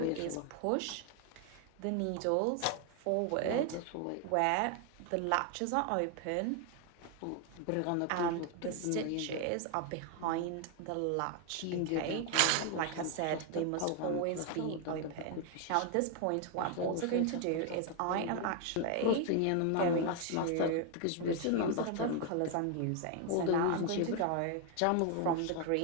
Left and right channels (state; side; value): different; both; correlation 0.01